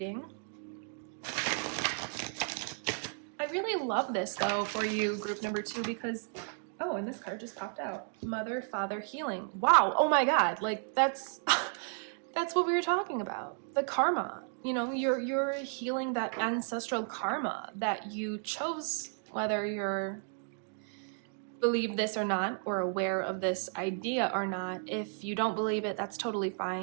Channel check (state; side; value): silent; left; 55 dB below the other